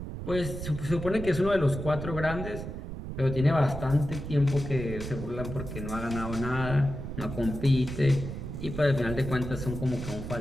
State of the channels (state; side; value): noise; right; rumble, 7 dB below the sound